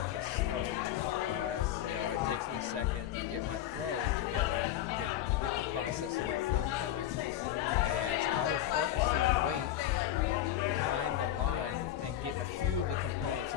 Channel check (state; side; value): quieter; right; 12.2 dB